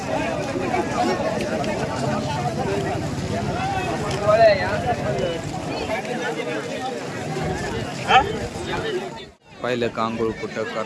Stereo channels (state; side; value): identical; both; correlation 1.00